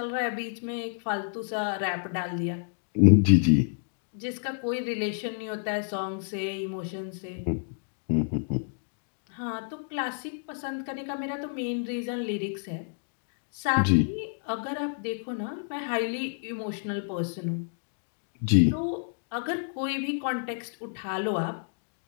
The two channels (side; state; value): right; silent; digital silence